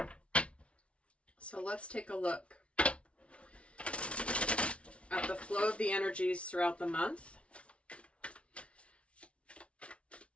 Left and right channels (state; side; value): late; right; 0.061 ms